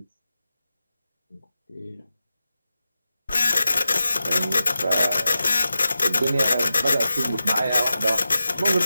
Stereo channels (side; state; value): both; inverted; correlation -0.92